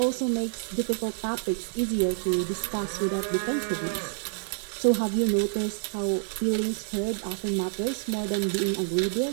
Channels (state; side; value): silent; left; digital silence